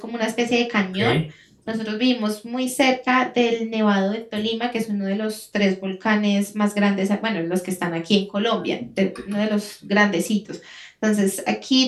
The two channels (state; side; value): identical; both; correlation 1.00